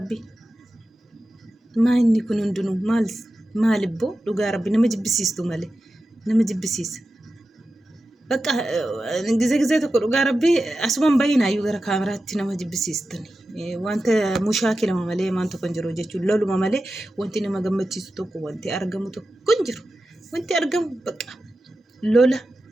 maanni kun hundinuu maalibboo dhugaa rabbi nama jibbisiistu malee nama jibbisiisa bakka ጊዜ tokko dhugaa rabbi asumaan baay'inaayyuu gara kaameraatti nama jibbisiistani wanta mushaakilama malee maan tokko hin jiru jechuun loluma malee wanti nama gammachiisu tokko wanti argamu tokko hin jiru wanti argamu bakka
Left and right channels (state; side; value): normal; both; correlation 0.92